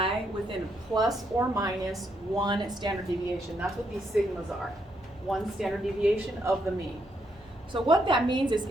within plus or minus 1 standard deviation. That's what these sigmas are, 1 standard deviation of the mean. So what that means is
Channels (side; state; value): both; normal; correlation 0.76